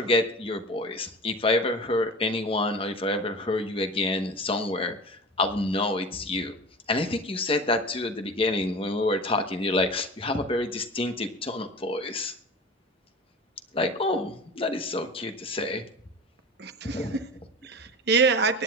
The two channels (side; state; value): both; normal; correlation 0.34